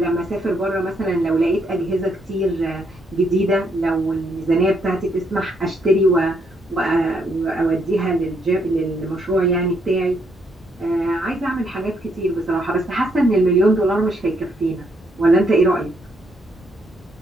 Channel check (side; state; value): both; normal; correlation 0.74